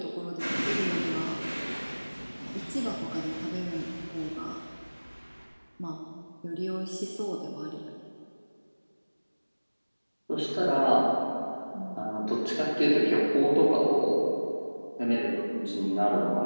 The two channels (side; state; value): both; inverted; correlation -1.00